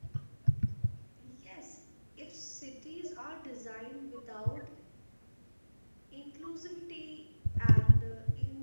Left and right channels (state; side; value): inverted; both; correlation -1.00